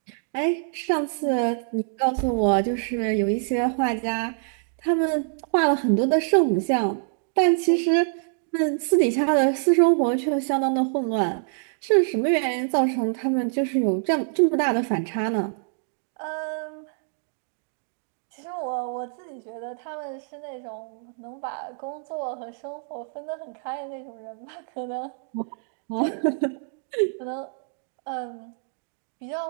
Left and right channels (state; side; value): silent; left; digital silence